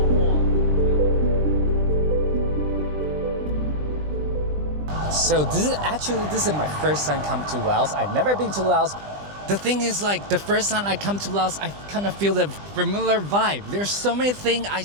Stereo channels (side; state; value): left; late; 20 ms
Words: 获。So this is my first time come to Laos. I've never been to Laos. The thing is, like, the first time I come to Laos, I kind of feel the familiar vibe. There's so many things I